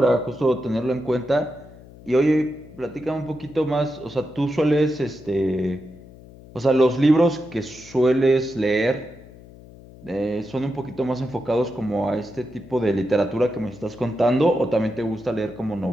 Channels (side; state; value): left; noise; hum, 20 dB below the sound